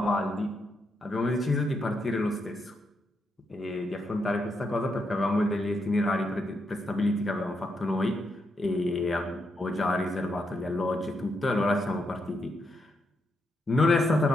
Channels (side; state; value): both; normal; correlation 0.81